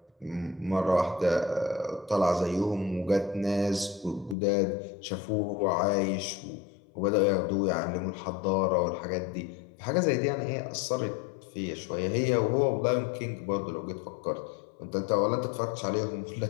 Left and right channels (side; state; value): right; drops out; at 4.4 s